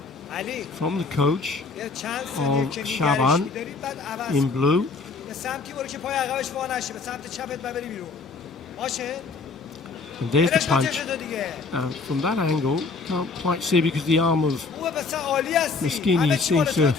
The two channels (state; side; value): quieter; right; 4.2 dB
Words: from the coach of Shaban in blue. And there's the punch. From that angle, can't quite see because the arm of Moschini seems to